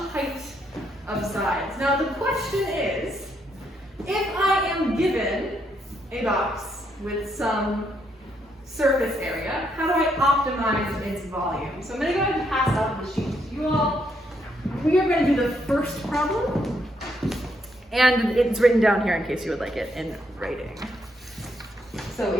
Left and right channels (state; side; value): normal; both; correlation 0.75